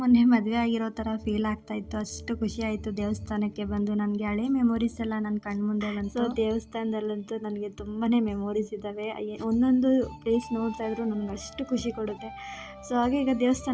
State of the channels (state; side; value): identical; both; correlation 1.00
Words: ಮೊನ್ನೆ ಮದುವೆ ಆಗಿರೋ ಥರ ಫೀಲ್ ಆಗ್ತಾ ಇತ್ತು. ಅಷ್ಟು ಖುಷಿ ಆಯಿತು ದೇವಸ್ಥಾನಕ್ಕೆ ಬಂದು. ನನಗೆ ಹಳೆ ಮೆಮೊರೀಸ್ ಎಲ್ಲ ನನ್ನ ಕಣ್ಮುಂದೆ ಬಂತು. ಸೊ ದೇವಸ್ಥಾನದಲ್ಲಂತೂ ನನಗೆ ತುಂಬಾ ಮೆಮೊರೀಸ್ ಇದ್ದಾವೆ. ಒಂದೊಂದು ಪ್ಲೇಸ್ ನೋಡ್ತಾ ಇದ್ರು ನನಗೆ ಅಷ್ಟು ಖುಷಿ ಕೊಡುತ್ತೆ. ಸೊ ಹಾಗೆ ಈಗ